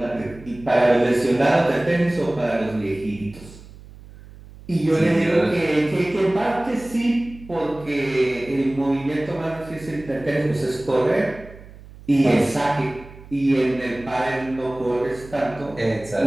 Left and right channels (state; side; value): noise; right; hum, 19 dB below the sound